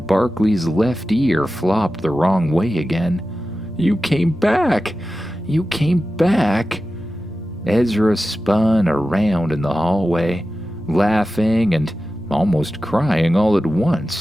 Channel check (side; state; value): left; noise; rumble, 24 dB below the sound